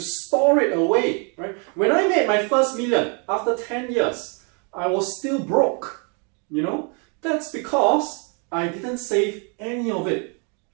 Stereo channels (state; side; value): quieter; left; 36.4 dB